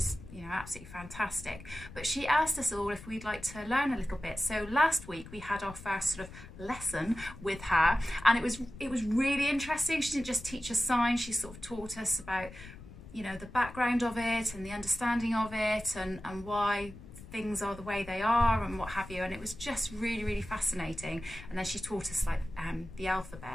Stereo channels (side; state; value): left; noise; rumble, 16 dB below the sound